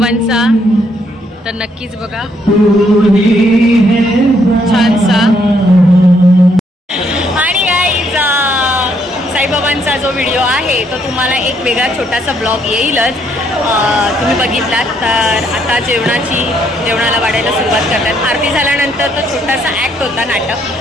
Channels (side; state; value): both; normal; correlation 0.71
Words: तर नक्कीच बघा छानसा. आणि गाईज साईबाबांचा जो व्हिडिओ आहे तो तुम्हाला एक वेगळा छोटासा ब्लॉग येईलच. तुम्ही बघितलात तर आता जेवणाला वाढायला सुरुवात करतात. आरती झाल्यानंतर तो छोटासा ॲक्ट होता, नाटक